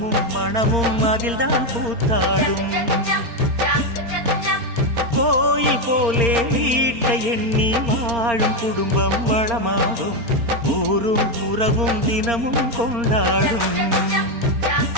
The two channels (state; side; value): late; left; 4.3 ms